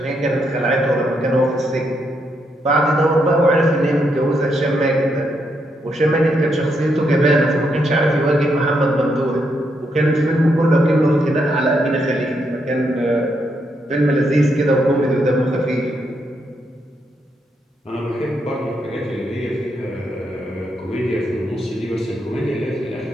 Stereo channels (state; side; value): normal; both; correlation 0.79